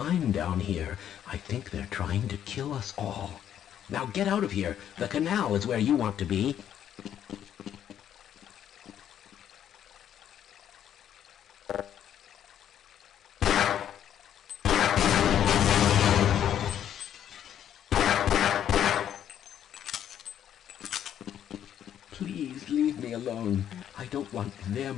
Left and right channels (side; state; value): right; quieter; 10.1 dB